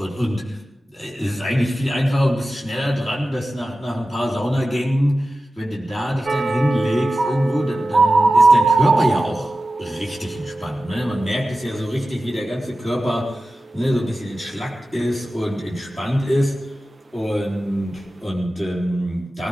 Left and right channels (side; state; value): both; normal; correlation 0.94